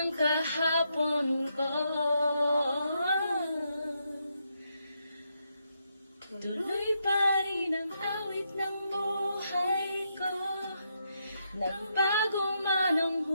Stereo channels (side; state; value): both; inverted; correlation -0.80